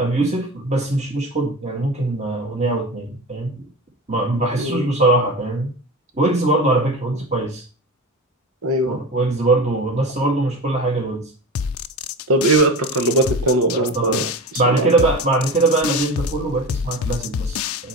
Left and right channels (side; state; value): both; normal; correlation 0.29